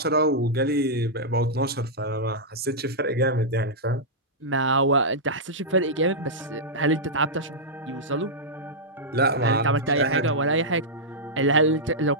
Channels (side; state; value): both; normal; correlation -0.09